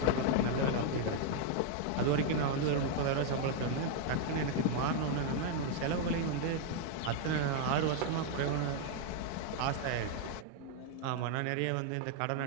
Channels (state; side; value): different; both; correlation 0.00